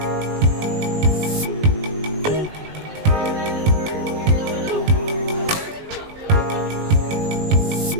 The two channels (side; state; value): left; late; 19 ms